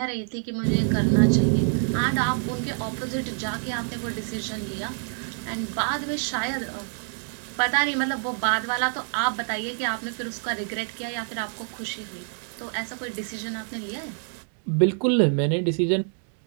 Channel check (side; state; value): left; silent; 56 dB below the other